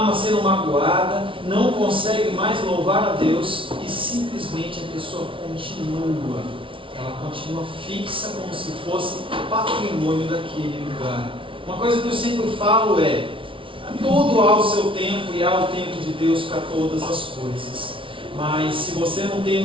sendo magoada, não consegue mais louvar a Deus e simplesmente a pessoa continua. Ela continua fixa como se fosse patrimônio daquele lugar. Uma coisa que eu sempre falo é: tudo há o seu tempo e há o tempo de Deus para todas as coisas. Mas se você não tem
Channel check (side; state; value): left; late; 0.25 ms